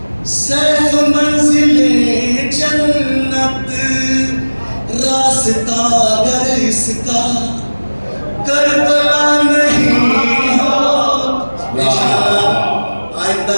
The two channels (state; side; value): inverted; both; correlation -1.00